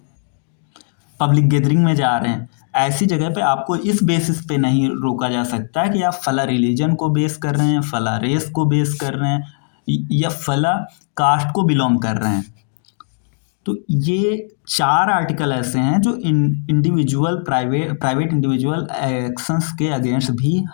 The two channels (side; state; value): right; silent; 67 dB below the other